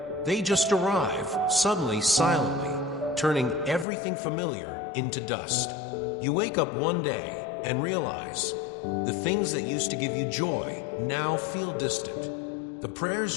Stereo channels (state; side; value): drops out; right; at 3.9 s